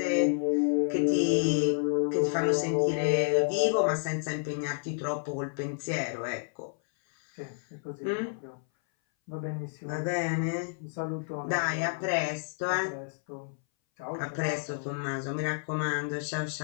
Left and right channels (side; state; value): right; silent; 58 dB below the other